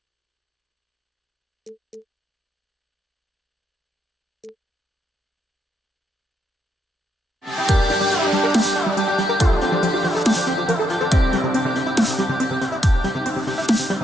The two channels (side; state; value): both; normal; correlation 0.78